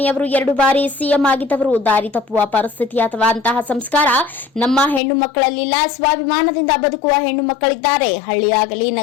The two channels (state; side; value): drops out; right; at 5.0 s